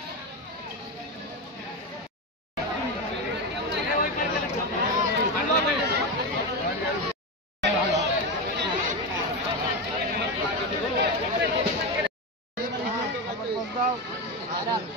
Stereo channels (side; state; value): both; normal; correlation 0.15